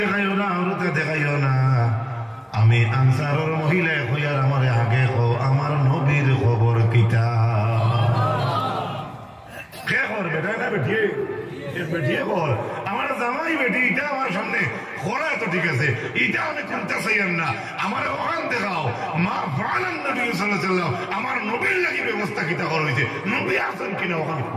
দেখাইও না আরতে দেখাইও না আমি আনসারের মহিলা কইয়ার আমারে আগে কও আমার নবীর খবর কিটা কে খবর বেটা না বেটিয়ে বেটিয়ে কর আমার জামাই বেটি এটা আমার সামনে খোলা তো ঠিক আছে এটা আমি করতে চাইম না আমার ওখান দেখাও মা ফাআলান নবী সাল্লাল্লাহু আলাইহি ওয়াসাল্লাম আমার নবীর লাগি ব্যবস্থা কিটা করা হইছে নবী আছেন কিনা ওখানে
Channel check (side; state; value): both; identical; correlation 1.00